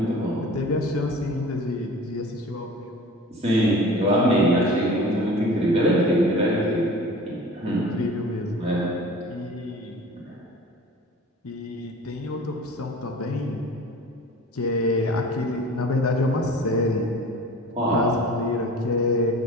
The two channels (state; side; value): normal; both; correlation 0.41